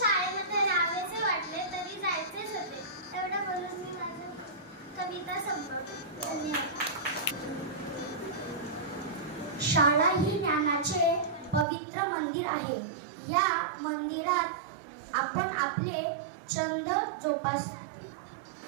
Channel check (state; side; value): drops out; left; at 11.7 s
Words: राहावेसे वाटले तरी जायचेच होते. एवढं बोलून मी माझी कविता संपवते. धन्यवाद. शाळा ही ज्ञानाचे पवित्र मंदिर आहे. या मंदिरात आपण आपले छंद जोपास.